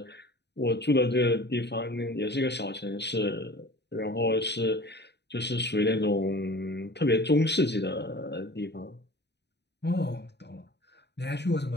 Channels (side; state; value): right; late; 0.50 ms